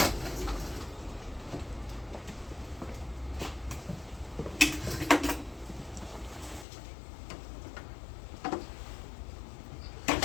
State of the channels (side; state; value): right; drops out; at 6.7 s